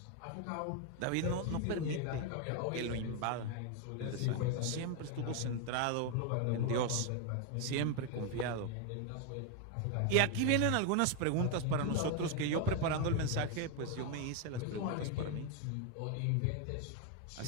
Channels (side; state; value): both; different; correlation 0.01